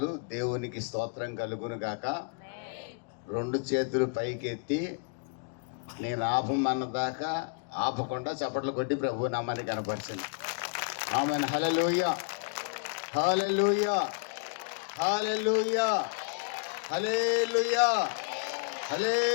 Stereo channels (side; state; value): right; quieter; 38.8 dB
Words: దేవునికి స్తోత్రం కలుగును గాక. 2 చేతులు పైకెత్తి నేను ఆపమన్నదాకా ఆపకుండా చప్పట్లు కొట్టి ప్రభు నామాన్ని కనపరిచింది. Amen. Hallelujah, hallelujah, hallelujah, hallelujah,